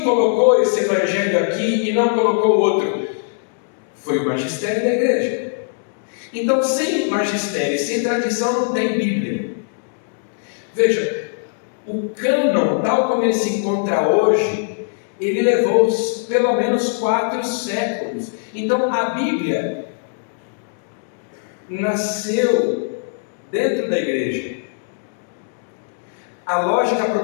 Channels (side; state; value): right; silent; digital silence